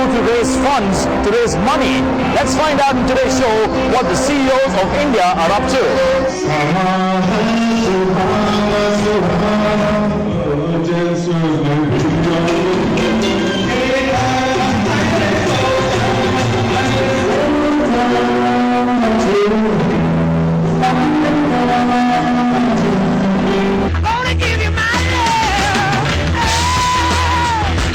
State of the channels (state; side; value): identical; both; correlation 1.00